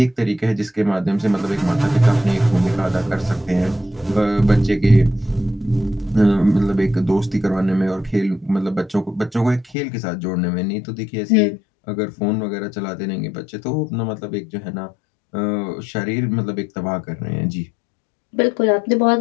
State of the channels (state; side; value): drops out; right; at 9.8 s